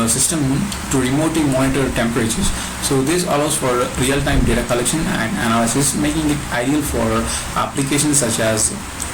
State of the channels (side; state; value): both; identical; correlation 1.00